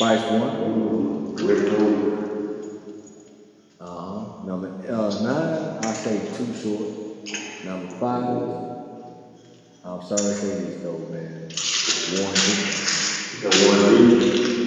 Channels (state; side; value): identical; both; correlation 1.00